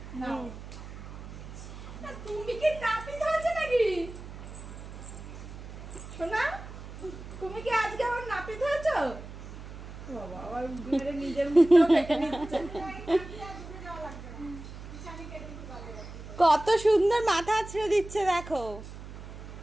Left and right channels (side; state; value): right; noise; hum, 12 dB below the sound